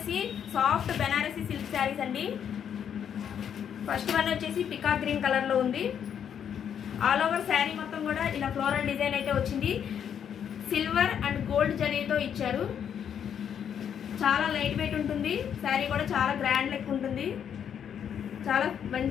సాఫ్ట్ బెనారసీ సిల్క్ శారీస్ అండి. ఫస్ట్ వన్ వచ్చేసి పికాక్ గ్రీన్ కలర్లో ఉంది. ఆల్ ఓవర్ శారీ మొత్తం కూడా ఇలా ఫ్లోరల్ డిజైన్ అయితే వచ్చింది. సిల్వర్ అండ్ గోల్డ్ జరీతో ఇచ్చారు. చాలా లైట్ వెయిట్ ఉంటుంది. శారీ కూడా చాలా గ్రాండ్ లెక్ ఉంటుంది. చాలా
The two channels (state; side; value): quieter; right; 8.5 dB